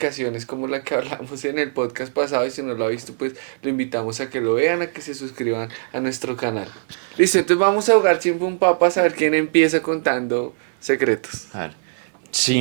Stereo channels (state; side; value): silent; left; 58 dB below the other